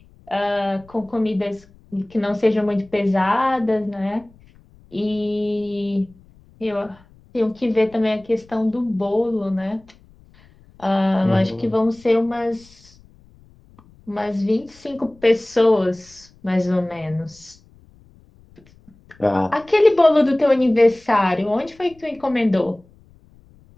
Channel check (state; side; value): noise; left; rumble, 28 dB below the sound